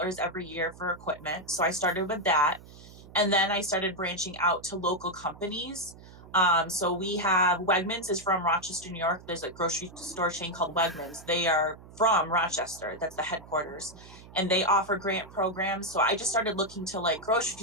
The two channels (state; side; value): noise; right; hum, 19 dB below the sound